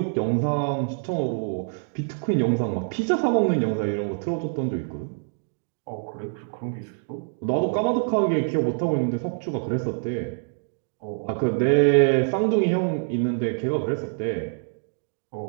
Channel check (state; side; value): silent; left; digital silence